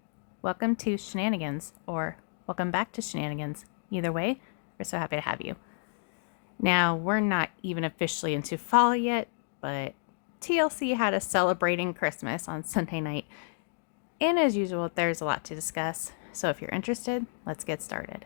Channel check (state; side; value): silent; right; digital silence